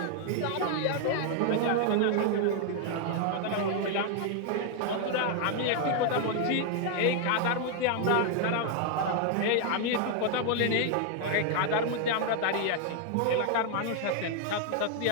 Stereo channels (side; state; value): both; different; correlation 0.00